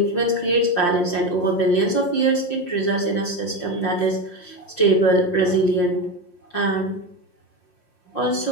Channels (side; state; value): right; late; 5.6 ms